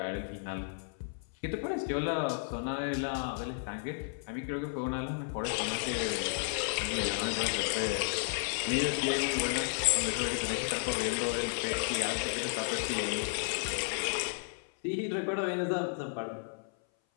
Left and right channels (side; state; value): right; silent; 56 dB below the other